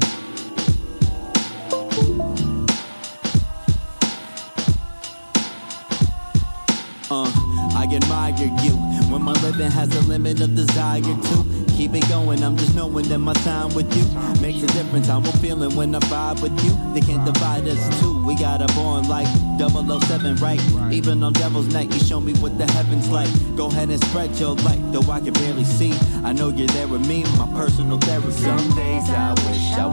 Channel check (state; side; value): inverted; both; correlation -1.00